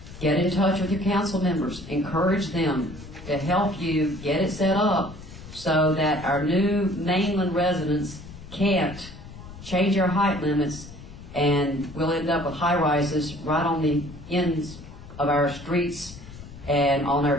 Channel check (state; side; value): noise; left; rumble, 16 dB below the sound